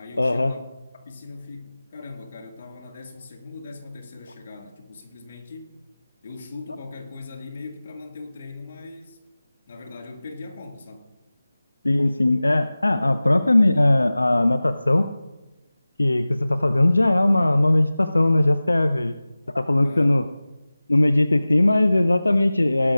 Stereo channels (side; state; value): both; inverted; correlation -0.98